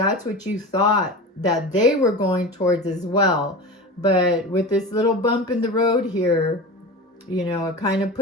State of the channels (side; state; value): both; normal; correlation 0.29